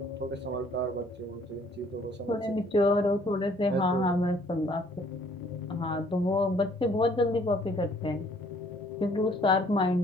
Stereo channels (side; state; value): both; normal; correlation 0.60